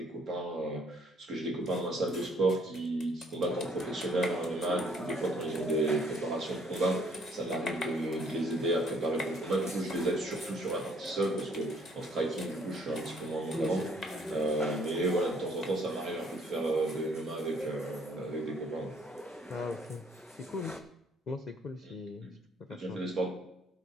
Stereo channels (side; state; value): both; normal; correlation 0.63